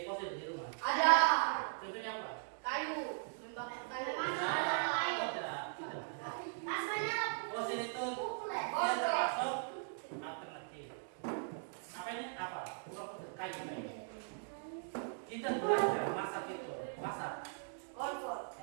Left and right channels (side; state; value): left; silent; digital silence